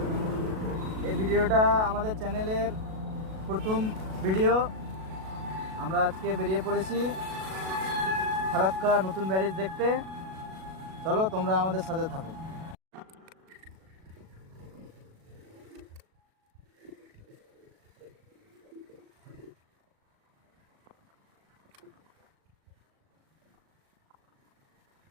এই ভিডিওটা আমাদের চ্যানেলের প্রথম ভিডিও। আমরা আজকে বেরিয়ে পড়েছি ফারাক্কা নতুন ব্যারেজ দেখতে। চলো তোমরা আমাদের সাথে থাকো।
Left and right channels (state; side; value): late; left; 37 ms